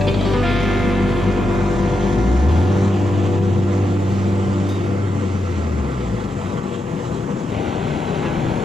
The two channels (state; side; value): normal; both; correlation 0.85